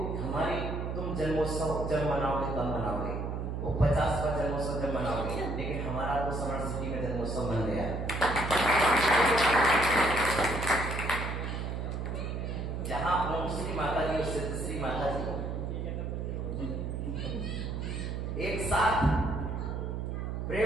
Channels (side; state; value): right; noise; hum, 3 dB below the sound